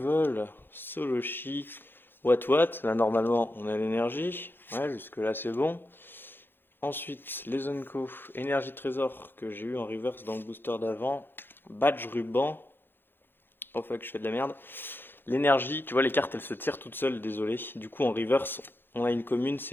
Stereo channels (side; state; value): right; late; 0.10 ms